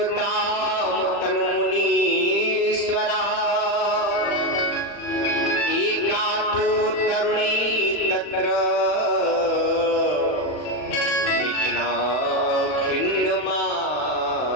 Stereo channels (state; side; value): late; right; 40 ms